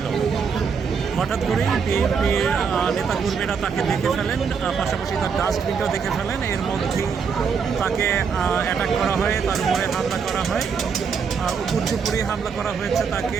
হঠাৎ করেই বিএনপির নেতাকর্মীরা তাকে দেখে ফেলেন, পাশাপাশি তার ডাস্টবিনটাও দেখে ফেলেন। এর মধ্যেই তাকে অ্যাটাক করা হয়, তার উপরে হামলা করা হয়, উপর্যুপুরি হামলা করা হয়েছে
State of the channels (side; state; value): left; quieter; 6.1 dB